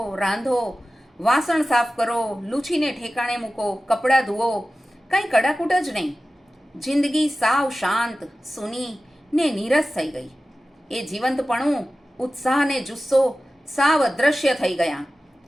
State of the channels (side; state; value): both; normal; correlation 0.95